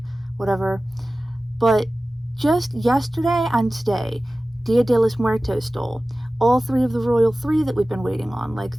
whatever. But just yesterday and today, Dia de los Muertos stole all three of the Royal Three that we've been waiting on, like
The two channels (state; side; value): normal; both; correlation 0.96